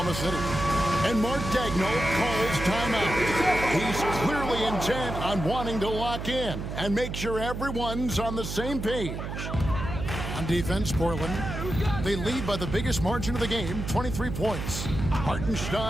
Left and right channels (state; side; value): noise; right; hum, 6 dB below the sound